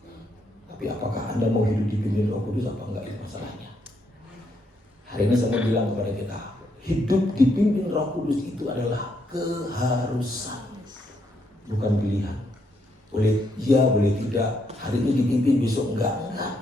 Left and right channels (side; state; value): both; normal; correlation 0.76